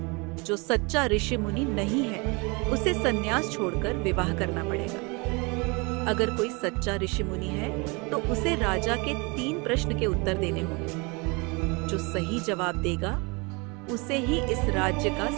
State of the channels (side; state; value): left; quieter; 28.8 dB